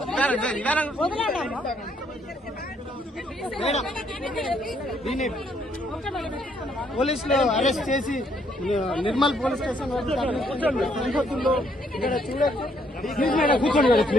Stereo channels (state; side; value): normal; both; correlation 0.70